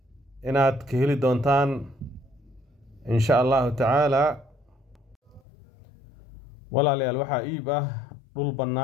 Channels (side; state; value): right; drops out; at 5.4 s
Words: inaad ka heli doontaan insha Allah tacaala walaalayaal waxaa iib ah dhul